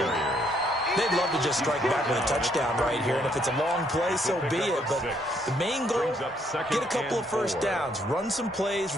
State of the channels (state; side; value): normal; both; correlation 0.70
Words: They'd love to just strike back with a touchdown right here, and if it's a long play, so be it. But the main goal, get a couple of first downs, run some plays,